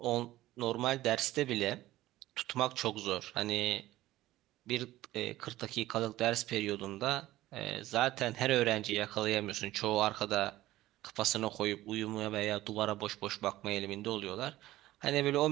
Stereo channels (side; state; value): left; quieter; 15.9 dB